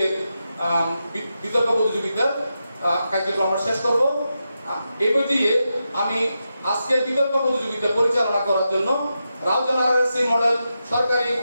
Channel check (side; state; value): both; inverted; correlation -0.88